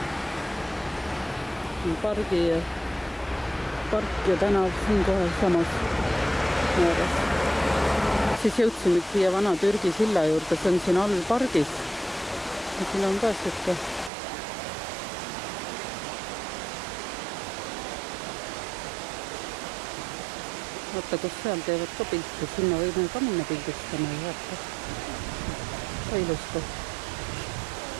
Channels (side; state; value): left; drops out; at 14.1 s